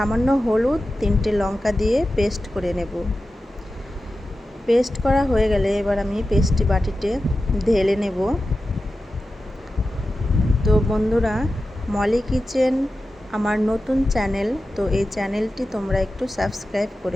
হলুদ, 3টে লঙ্কা দিয়ে পেস্ট করে নেব। পেস্ট করা হয়ে গেলে এবার আমি পেস্টটি বাটিতে ঢেলে নেব। তো বন্ধুরা, মলি কিচেন আমার নতুন চ্যানেল, তো এই চ্যানেলটি তোমরা একটু সাবস্ক্রাইব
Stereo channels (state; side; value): normal; both; correlation 0.93